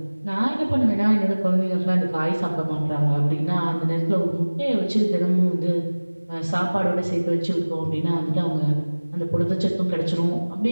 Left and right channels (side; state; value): both; inverted; correlation -1.00